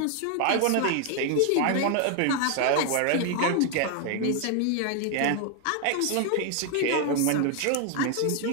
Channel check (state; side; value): different; both; correlation 0.01